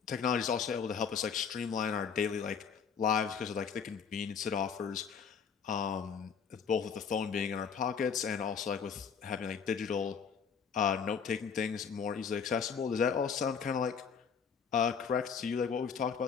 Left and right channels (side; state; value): right; quieter; 6.6 dB